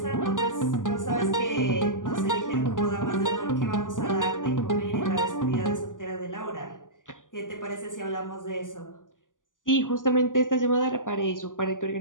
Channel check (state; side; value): late; right; 0.88 ms